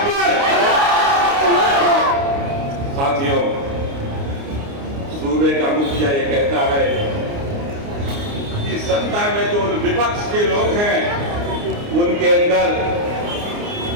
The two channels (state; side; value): late; left; 29 ms